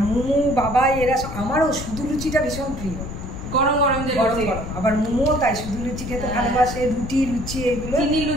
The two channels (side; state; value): left; noise; rumble, 8 dB below the sound